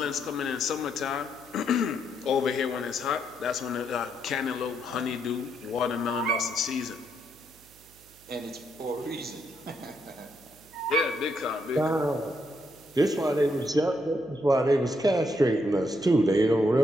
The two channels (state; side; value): noise; right; hum, 27 dB below the sound